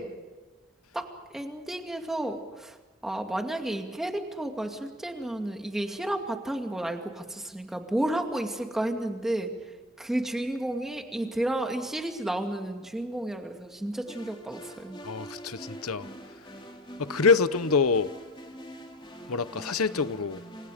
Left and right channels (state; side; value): normal; both; correlation 0.36